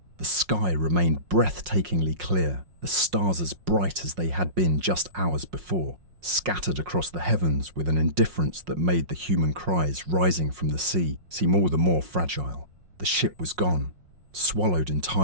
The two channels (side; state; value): left; late; 5.5 ms